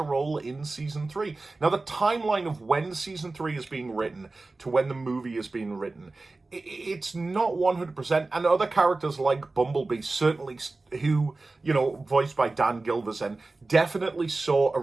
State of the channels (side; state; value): left; quieter; 3.4 dB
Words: role in season 3. Now, the timeline of when season 3 is being written to when the movie is being written, it's not 100%. And other characters like Bumblebee, certainly, who, you know, voiced by Dan Gilvezan, definitely saw a